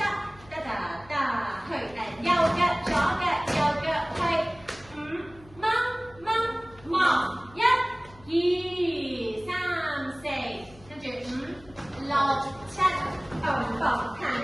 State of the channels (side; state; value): left; noise; hum, 23 dB below the sound